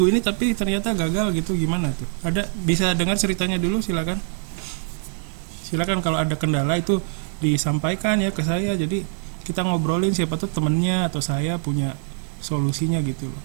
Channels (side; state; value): left; silent; digital silence